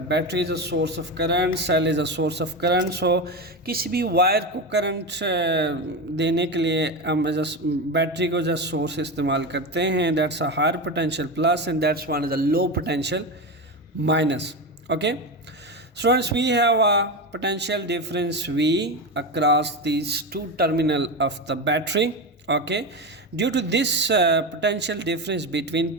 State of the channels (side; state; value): both; normal; correlation 0.18